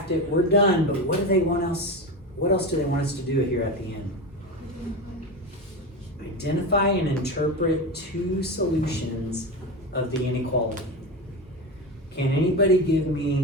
it, we're done, but what else do they want us to do here at the end? Identify and interpret two solutions of the inequality. Can anybody give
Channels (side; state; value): both; normal; correlation 0.21